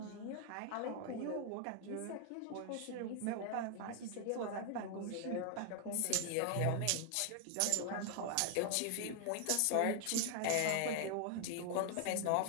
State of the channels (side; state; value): both; different; correlation 0.00